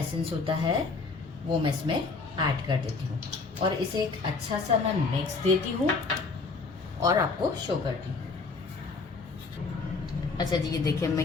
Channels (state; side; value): quieter; right; 4.2 dB